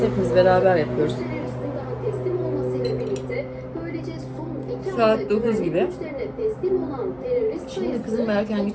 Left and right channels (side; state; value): both; identical; correlation 1.00